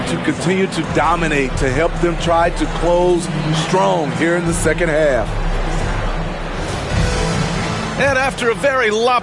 to continue to dominate, to help them try to close strong here in the second half. And after a very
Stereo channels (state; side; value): identical; both; correlation 1.00